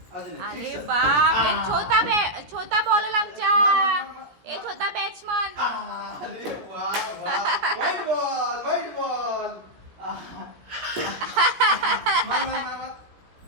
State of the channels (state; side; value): late; left; 17 ms